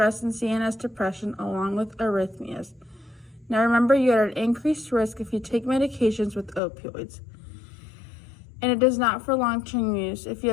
and CNS depression along with arrhythmias. Now remember, you are at increased risk if you take medications with opioids, and it is not for long-term use. If you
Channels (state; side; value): drops out; right; at 6.6 s